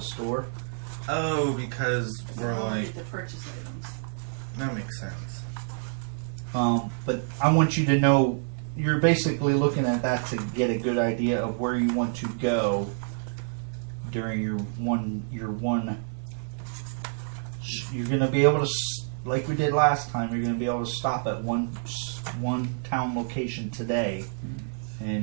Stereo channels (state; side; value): silent; left; digital silence